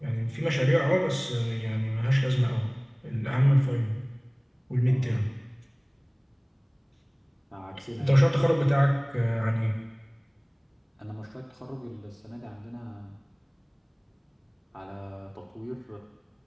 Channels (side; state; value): both; identical; correlation 1.00